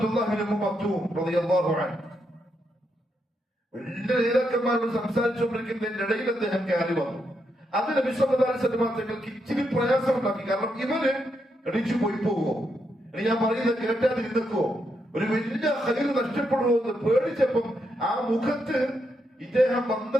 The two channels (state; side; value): normal; both; correlation 0.81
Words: ഇബ്നു മക്തൂം റളിയല്ലാഹു അൻഹു വലിയ നേതാക്കന്മാരോട് സംസാരിച്ചുകൊണ്ടിരിക്കുന്നതിന്റെ ഇടയിൽ അദ്ദേഹം കയറി വന്നു. അത് നബി സല്ലല്ലാഹു അലൈഹി വസല്ലം തങ്ങൾക്ക് ഇച്ചിരി പ്രയാസമുണ്ടാക്കി. കാരണം ഇവര് എണീച്ചു പോയി പോവോ, ഇനി ഞാൻ പറയുന്നത് കേട്ടാതിരുന്നോ, ഒരു വലിയ ഖൈർ നഷ്ടപ്പെടുമോ എന്ന് പേടിച്ചപ്പം ആ മുഖത്ത് ഇദ്ദേഹം